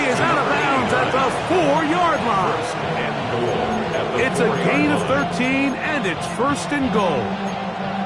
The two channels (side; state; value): both; identical; correlation 1.00